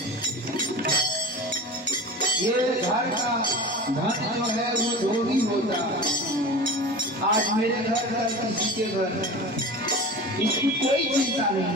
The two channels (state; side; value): normal; both; correlation 0.32